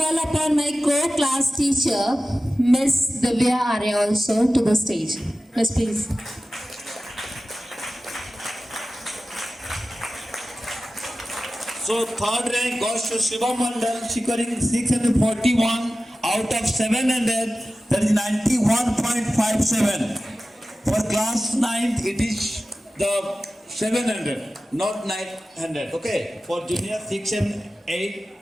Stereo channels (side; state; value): both; normal; correlation 0.95